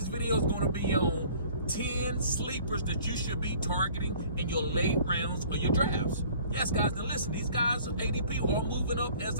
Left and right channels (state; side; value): inverted; both; correlation -0.52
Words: video is going to be on 10 sleepers that you should be targeting in your late rounds or your drafts. Yes, guys, now listen, these guys' ADP are moving up as